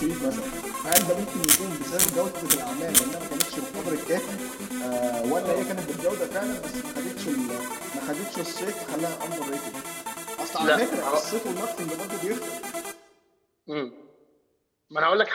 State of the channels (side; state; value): both; identical; correlation 1.00